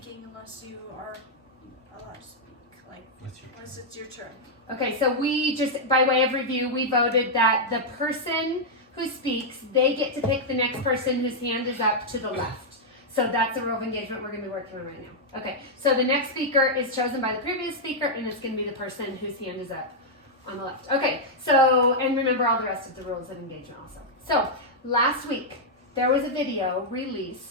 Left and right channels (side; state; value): both; normal; correlation -0.05